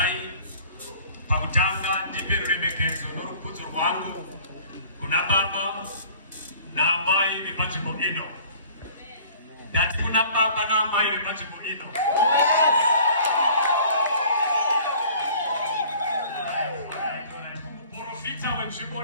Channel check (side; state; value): both; inverted; correlation -0.50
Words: pakutanga ndipe remekezo norukudzo rwangu kuna baba na amai vepanzvimbo ino. Ndati kuna baba na amai vepanzvimbo ino. Kumuprofita wenzvimbo